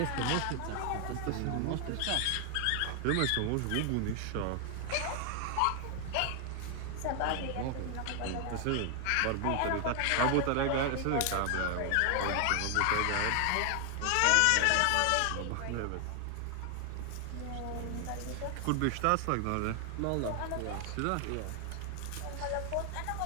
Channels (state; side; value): different; both; correlation 0.00